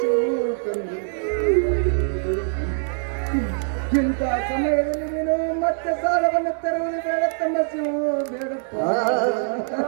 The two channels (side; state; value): left; silent; digital silence